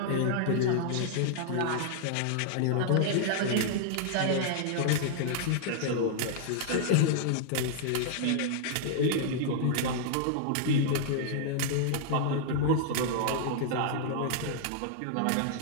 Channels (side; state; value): both; different; correlation -0.01